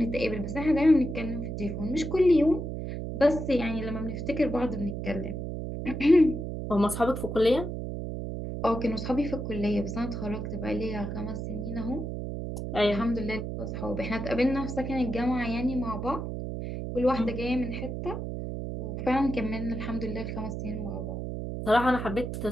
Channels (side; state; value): right; noise; hum, 5 dB below the sound